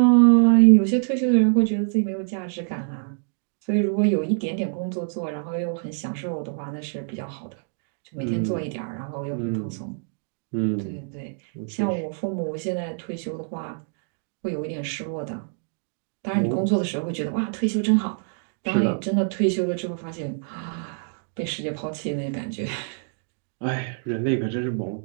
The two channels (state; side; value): silent; left; 62 dB below the other